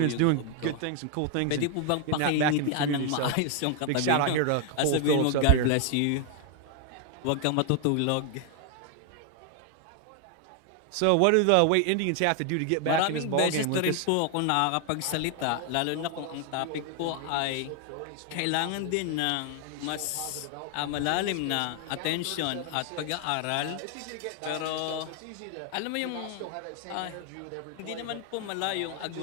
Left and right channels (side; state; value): both; different; correlation 0.00